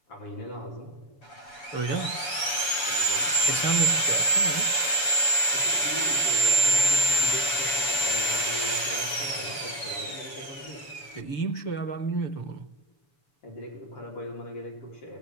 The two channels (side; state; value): right; late; 7.0 ms